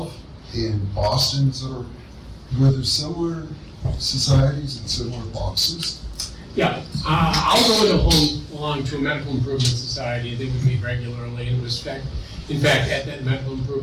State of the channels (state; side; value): identical; both; correlation 1.00